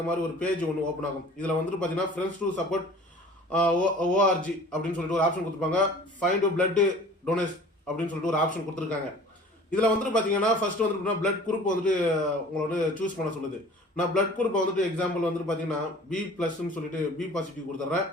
மாதிரி ஒரு பேஜ் ஒன்று ஓப்பன் ஆகும். இதில் வந்துட்டு பார்த்தீங்கன்னா ஃப்ரெண்ட்ஸ் டு சப்போர்ட் ஓஆர்ஜி அப்படின்னு சொல்லிட்டு ஒரு ஆப்ஷன் கொடுத்துருப்பாங்க. ஃபைண்ட் பிளட் டொனேட் அப்படின்னு சொல்லிட்டு ஒரு ஆப்ஷன் கொடுத்துருக்காங்க. இதில் வந்துட்டு பார்த்தீங்கன்னா ஃபர்ஸ்ட் வந்துட்டு பிளட் குரூப் வந்துட்டு உங்களை வந்து சூஸ் பண்ண சொல்லுது. நான் பிளட் குரூப்பை வந்துட்டு எக்ஸாம்பிள் வந்துட்டு பார்த்தீங்கன்னா B+ சொல்லிட்டு B பாசிட்டிவ் கொடுத்துட்றேன்.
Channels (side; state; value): both; normal; correlation 0.46